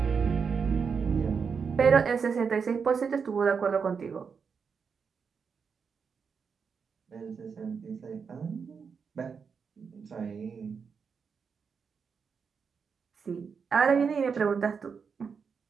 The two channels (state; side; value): quieter; left; 5.9 dB